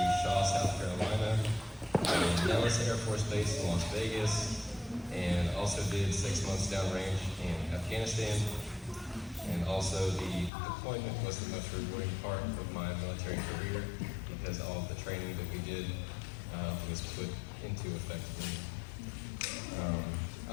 Shaw, South Carolina, Nellis Air Force Base in Las Vegas, and also did 6 months downrange in Afghanistan. And also the deployment was the most rewarding part of my military career because all of the training that we did was put into effect.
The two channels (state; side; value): drops out; right; at 10.5 s